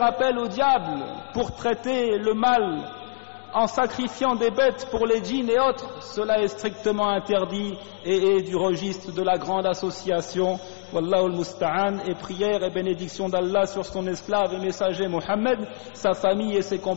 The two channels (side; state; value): right; silent; digital silence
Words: appel au diable pour traiter le mal en sacrifiant des bêtes pour les djinns et autres, cela est strictement interdit et est du registre de la grande association. Wallahu al-musta'an, et prière et bénédiction d'Allah sur son esclave et messager Mohammed, sa famille et ses